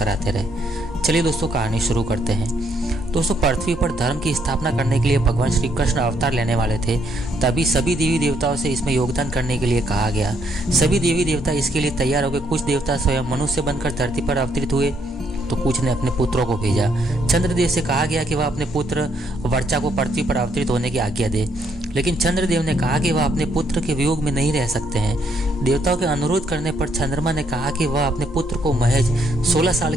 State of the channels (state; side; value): normal; both; correlation 0.72